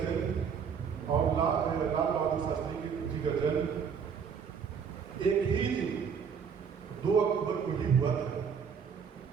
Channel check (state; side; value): quieter; left; 6.8 dB